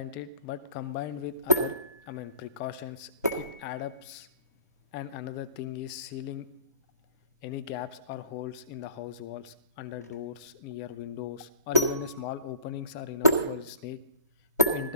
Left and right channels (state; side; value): inverted; both; correlation -0.48